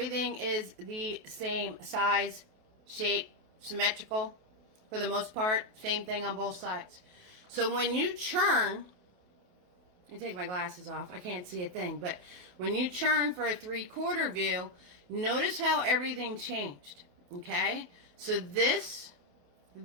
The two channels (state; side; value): late; left; 28 ms